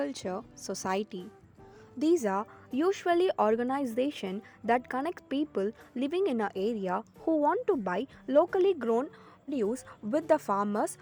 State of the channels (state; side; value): identical; both; correlation 1.00